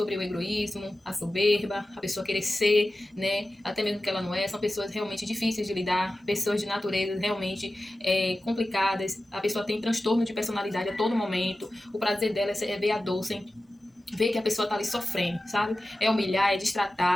o egoísmo, a soberba, a pessoa querer ser, né? Até mesmo que ela não é, são pessoas realmente difíceis de lidar, pessoas de natureza realmente complicadas, a pessoa tem transtorno de personalidade a todo momento, o prazer dela é ver a dor sem ver que a pessoa tá ali sofrendo, sabe? É humilhar, é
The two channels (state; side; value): normal; both; correlation 0.94